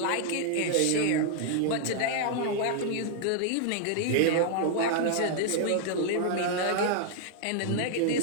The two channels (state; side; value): different; both; correlation -0.01